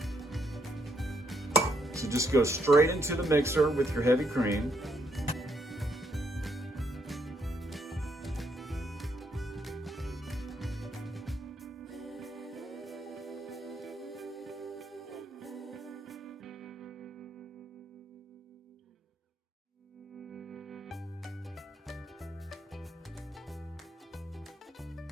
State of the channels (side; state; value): both; normal; correlation 0.74